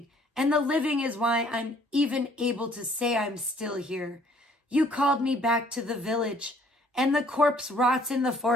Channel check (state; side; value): normal; both; correlation 0.60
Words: and the living is why I'm even able to say I'm still here. You called me back to the village, and the corpse rots in the